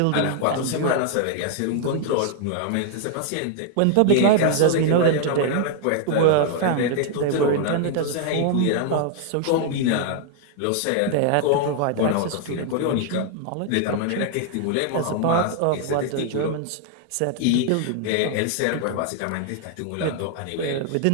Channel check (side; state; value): both; different; correlation 0.00